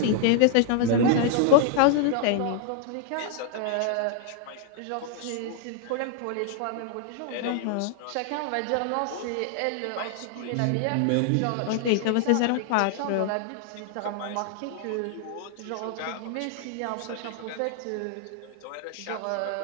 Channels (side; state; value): both; different; correlation 0.00